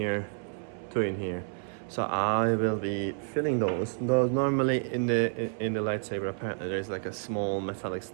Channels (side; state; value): left; silent; 58 dB below the other